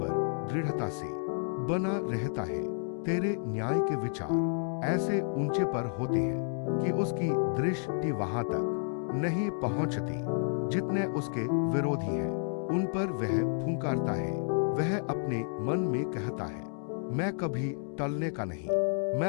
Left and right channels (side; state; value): right; silent; 57 dB below the other